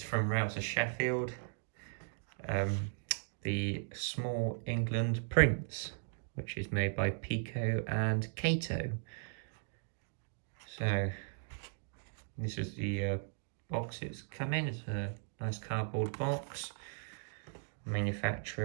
from Rouse Sheffield the Small England Prince, which is made by Peco and Kato. So this is the box it's come in. It's a nice cardboard box.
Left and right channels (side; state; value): left; silent; digital silence